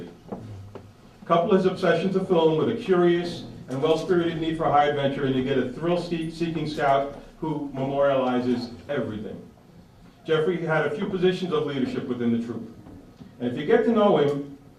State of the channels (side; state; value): both; identical; correlation 1.00